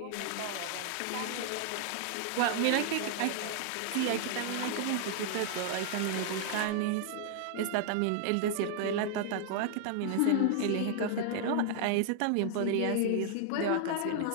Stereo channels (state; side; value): different; both; correlation -0.01